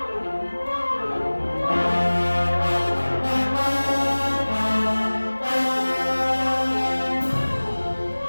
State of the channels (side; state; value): both; inverted; correlation -1.00